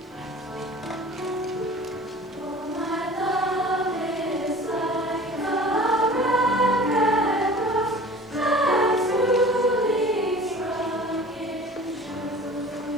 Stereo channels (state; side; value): normal; both; correlation 0.43